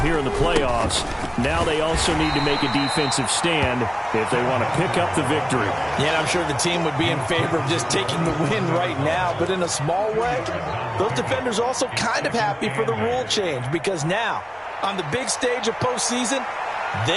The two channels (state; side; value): identical; both; correlation 1.00